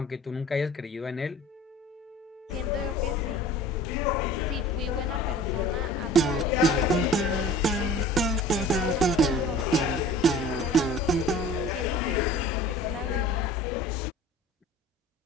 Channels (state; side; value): normal; both; correlation 0.44